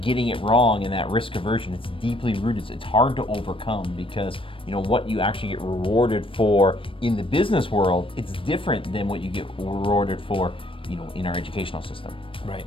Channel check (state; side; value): late; right; 0.25 ms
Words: getting it wrong and that risk aversion, it's deeply rooted. It's hard to overcome because what you actually get rewarded for in the business world, it's different than what you get rewarded for, in our educational system. Right.